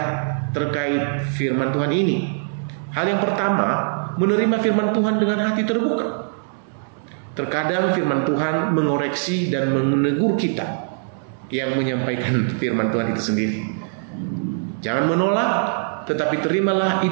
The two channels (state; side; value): silent; left; 64 dB below the other